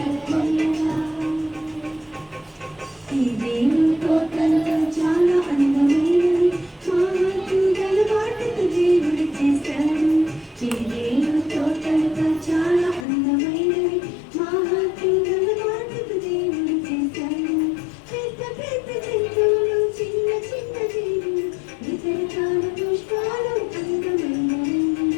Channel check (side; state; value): right; drops out; at 13.1 s